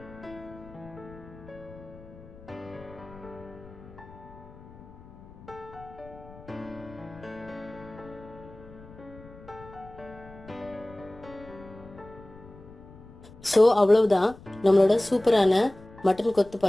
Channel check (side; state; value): left; noise; rumble, 19 dB below the sound